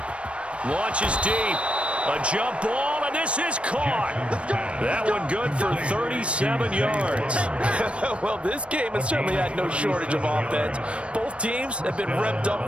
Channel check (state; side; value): late; left; 0.060 ms